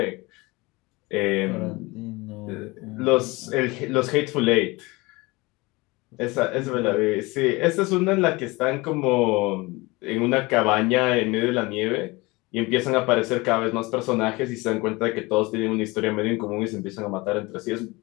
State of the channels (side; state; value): right; quieter; 23.5 dB